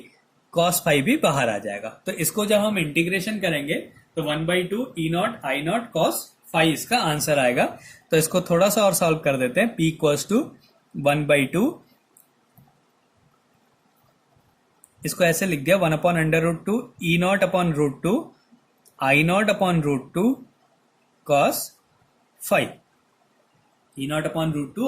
cos फाई भी बाहर आ जाएगा। तो इसको जब हम इंटीग्रेशन करेंगे तो 1/2 E0 I0 cos फाई इसका आंसर आएगा। तो इसको थोड़ा सा और सॉल्व कर देते हैं। P = 1/2, इसको ऐसे लिख दिया 1/√2 E0/√2 I0/√2 cos phi,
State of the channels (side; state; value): both; identical; correlation 1.00